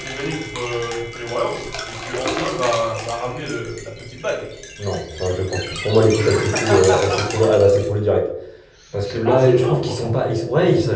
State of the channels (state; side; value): identical; both; correlation 1.00